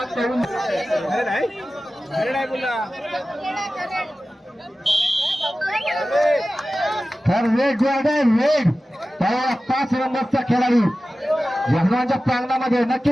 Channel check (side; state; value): both; normal; correlation 0.95